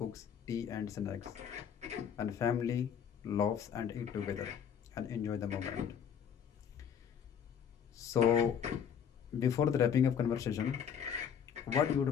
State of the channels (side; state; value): right; quieter; 8.0 dB